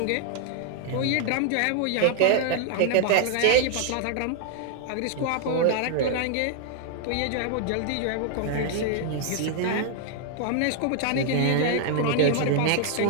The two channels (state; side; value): different; both; correlation 0.00